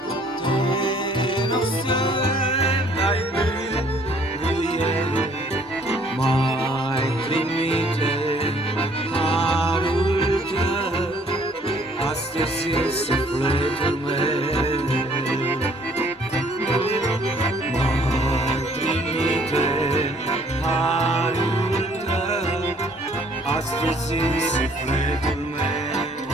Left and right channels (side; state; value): both; normal; correlation 0.61